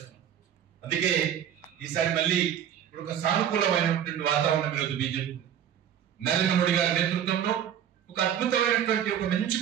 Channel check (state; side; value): quieter; left; 9.6 dB